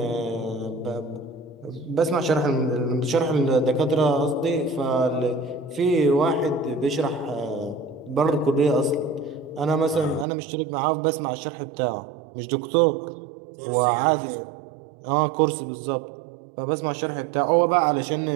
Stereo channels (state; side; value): drops out; left; at 10.2 s